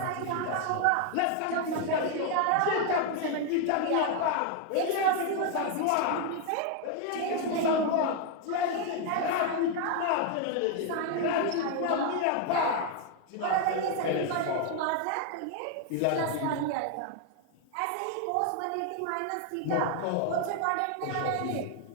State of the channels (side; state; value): both; different; correlation 0.00